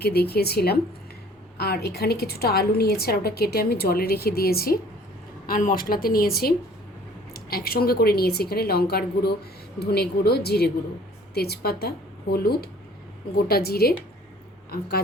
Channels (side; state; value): both; normal; correlation 0.53